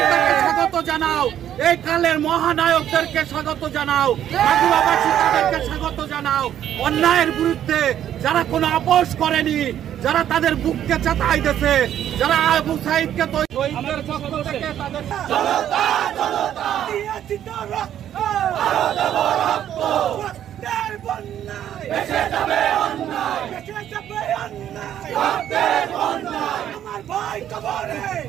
তাকে স্বাগত জানাও। এই কালের মহানায়কদেরকে স্বাগত জানাও, মাগুরাবাসী তাদেরকে স্বাগত জানাও। অন্যায়ের বিরুদ্ধে যারা কোনো আপোষ করেনি, যারা তাদের বুককে চাতাই দিয়েছে, যারা আবু সাইদকে শহীদদের পক্ষ থেকে তাদের আমার ভাই কবরে,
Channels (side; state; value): left; quieter; 10.7 dB